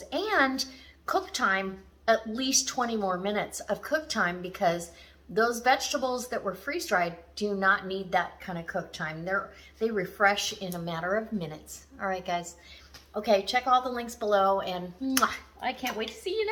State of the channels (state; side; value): identical; both; correlation 1.00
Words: and cook time, at least 20 more minutes of cook time, because those vegetables that were freeze-dried do not need that kind of cook time. They refresh in a matter of minutes. All right, guys. Okay, check all the links below, and I can't wait to see you